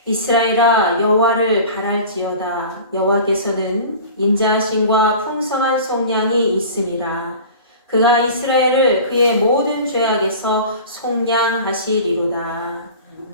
이스라엘아 여호와를 바랄지어다. 여호와께서는 인자하심과 풍성한 속량이 있음이라. 그가 이스라엘을 그의 모든 죄악에서 속량하시리로다.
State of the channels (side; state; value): both; inverted; correlation -0.39